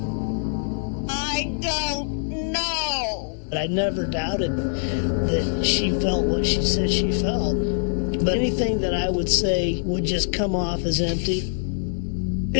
I don't know. But I never doubted that she felt what she said she felt. But anything that I would say would just come off as empty.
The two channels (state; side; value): silent; right; 63 dB below the other